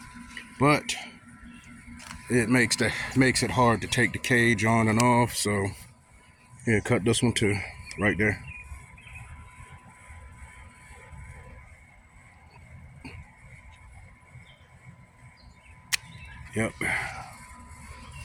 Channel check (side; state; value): both; identical; correlation 1.00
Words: but it makes it hard to take the cage on and off. So here, cut this one too, right there. Yep.